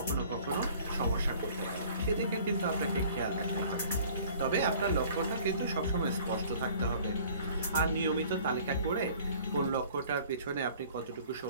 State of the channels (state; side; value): inverted; both; correlation -0.51